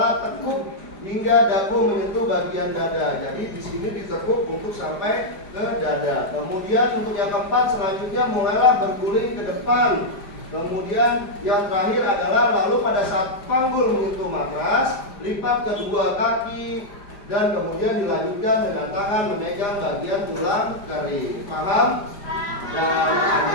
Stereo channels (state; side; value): late; right; 5.0 ms